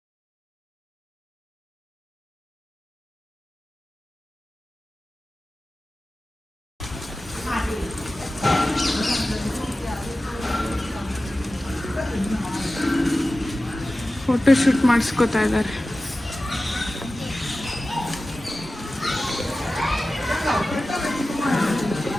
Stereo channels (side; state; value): both; normal; correlation 0.95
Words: ಫೋಟೋ ಶೂಟ್ ಮಾಡಿಸ್ಕೋತಾ ಇದ್ದಾರೆ.